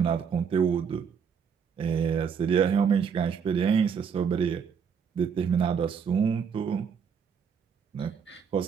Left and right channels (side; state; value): left; quieter; 6.8 dB